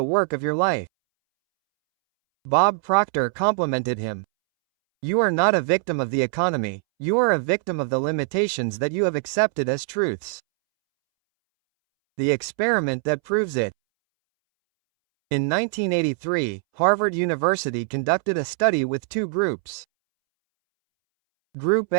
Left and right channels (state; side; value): silent; left; 64 dB below the other